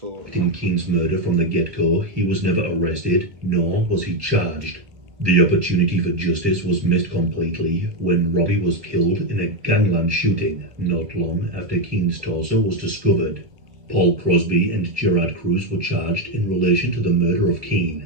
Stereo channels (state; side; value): late; left; 1.8 ms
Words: In Keane's murder from the get-go, he was never arrested, nor was he charged. The opportunity for justice was missed completely when Robbie was killed in a gangland shooting not long after Keane's torso was discovered. Paul Crosby and Gerard Cruz were charged in relation to the murder of